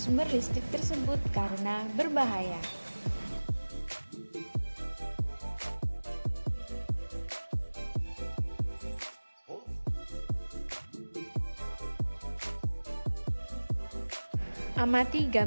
listrik tersebut karena berbahaya. Amati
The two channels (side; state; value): both; inverted; correlation -1.00